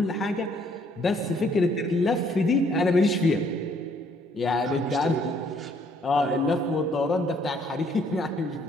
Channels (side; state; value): both; normal; correlation 0.65